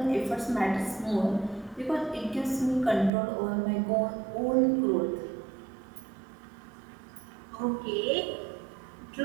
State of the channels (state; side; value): drops out; left; at 3.1 s